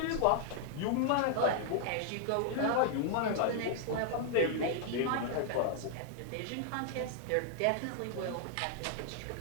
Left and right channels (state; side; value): different; both; correlation 0.00